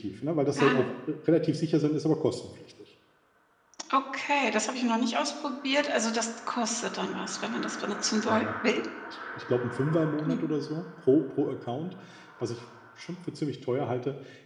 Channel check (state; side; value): identical; both; correlation 1.00